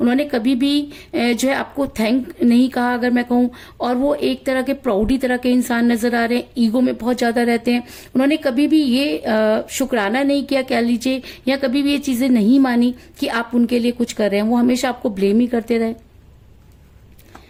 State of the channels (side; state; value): both; identical; correlation 1.00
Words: कभी भी जो है आपको थैंक नहीं कहा अगर मैं कहूं, और वो एक तरह के प्राउडी तरह के इंसान नजर आ रहे हैं, ईगो में बहुत ज्यादा रहते हैं। उन्होंने कभी भी ये शुक्राना नहीं किया कह लीजिए, या कभी भी ये चीजें नहीं मानी कि आप उनके लिए कुछ कर रहे हैं। वो हमेशा आपको ब्लेम ही करते रहे।